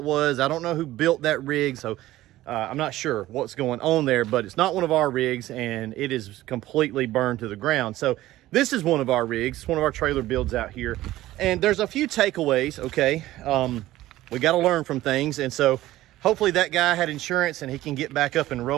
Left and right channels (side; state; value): left; quieter; 15.7 dB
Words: was. I don't know who built that rig, so I'm not sure what's going on there, but it's not one of our rigs, and it is completely burned to the ground. So this is one of our rigs. It's one of our trailer builds out here, and there's a few takeaways, okay? We got to learn from things, and so hopefully that guy had insurance and he can get back up and